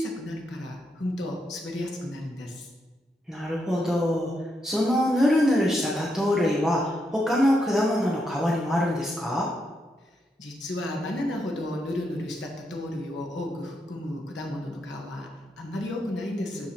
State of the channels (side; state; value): both; normal; correlation 0.81